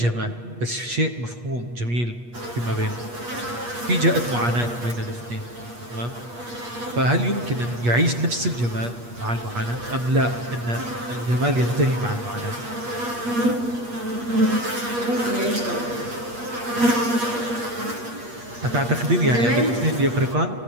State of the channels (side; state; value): left; late; 8.4 ms